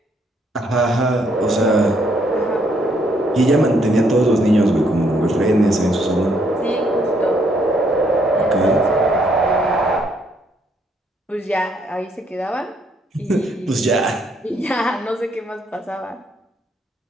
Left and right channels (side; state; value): both; normal; correlation 0.71